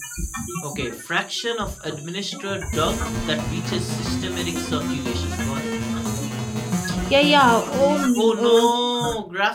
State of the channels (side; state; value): both; identical; correlation 1.00